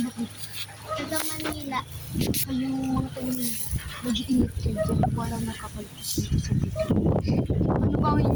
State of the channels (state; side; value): identical; both; correlation 1.00